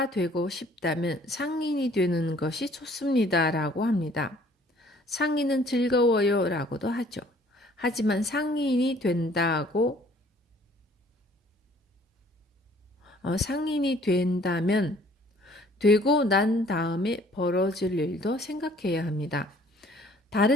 되고 싶다면 상인이 되는 것이 좋습니다. 라고 합니다. 상인은 즐거워요. 라고도 하죠. 하지만 상인이 된다면 되고 난 다음에 벌어질 일도 생각해야 합니다.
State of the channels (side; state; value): both; normal; correlation 0.57